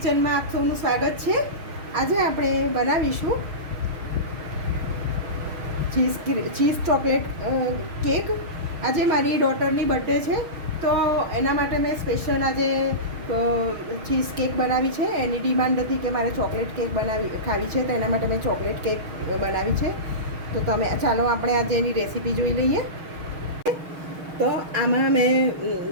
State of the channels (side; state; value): left; late; 6.4 ms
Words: આપ સૌનું સ્વાગત છે. આજે આપણે બનાવીશું ચીઝ ચોકલેટ કેક. આજે મારી ડોટરની બર્થડે છે, તો એના માટે મેં સ્પેશિયલ આજે ચીઝ કેક બનાવી છે. એની ડિમાન્ડ હતી કે મારે ચોકલેટ કેક ખાવી છે, તો એના માટે મેં ચોકલેટ કેક બનાવી છે. તો ચાલો આપણે આજે એની રેસીપી જોઈ લઈએ. તો આમાં મેં